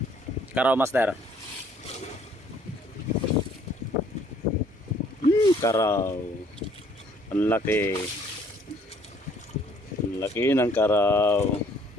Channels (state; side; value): normal; both; correlation 0.61